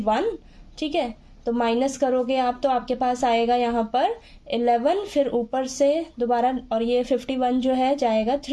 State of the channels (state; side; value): identical; both; correlation 1.00